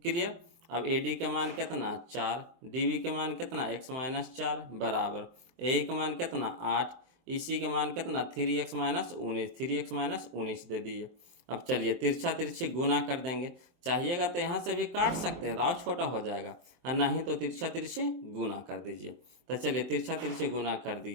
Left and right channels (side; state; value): left; late; 23 ms